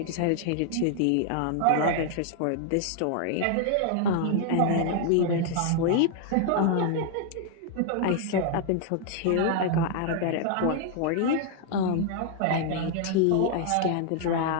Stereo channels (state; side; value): different; both; correlation 0.00